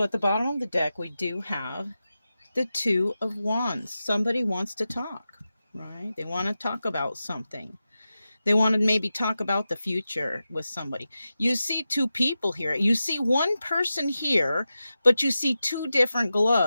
at the bottom of the deck, we do have the 2 of Wands. Somebody wants to talk, right? They want to talk about something. They want to maybe talk about the future with somebody. You see 2 people here. You see one person here, but you see 2 different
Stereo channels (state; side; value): inverted; both; correlation -0.92